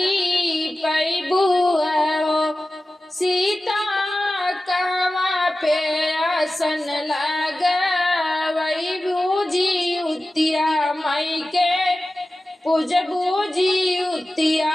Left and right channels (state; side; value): normal; both; correlation 0.95